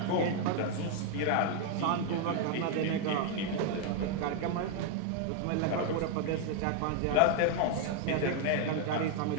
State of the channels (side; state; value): both; different; correlation 0.00